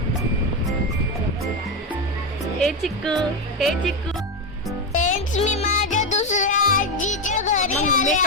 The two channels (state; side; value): normal; both; correlation 0.11